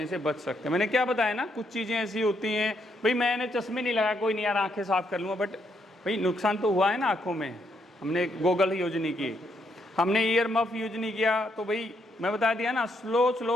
से बच सकते हैं। मैंने क्या बताया ना, कुछ चीज़ें ऐसी होती हैं भाई, मैंने चश्मे नहीं लगाया, कोई नहीं यार आंखें साफ कर लूँगा, बट भाई नुकसान तो हुआ है ना आँखों में। हमने गॉगल यूज नहीं किए, हमने ईयर मफ यूज नहीं किया, तो भाई मैं बता दिया ना,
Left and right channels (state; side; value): normal; both; correlation 0.76